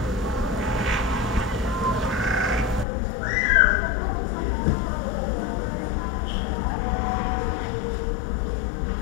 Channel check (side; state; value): right; drops out; at 2.9 s